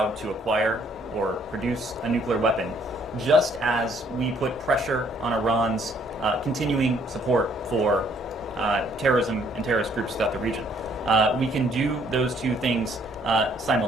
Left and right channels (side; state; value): both; normal; correlation 0.64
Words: to acquire or produce a nuclear weapon, just as we put pressure on Iran's continuing support for terrorism and terrorist groups throughout the region. We can do those two things